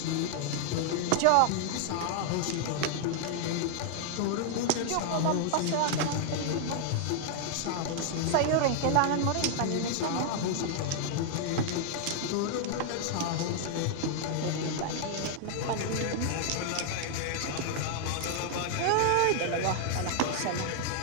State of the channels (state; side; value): different; both; correlation 0.00